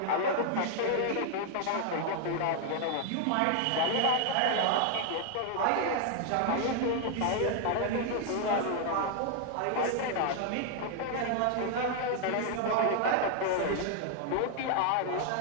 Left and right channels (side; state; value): both; different; correlation 0.00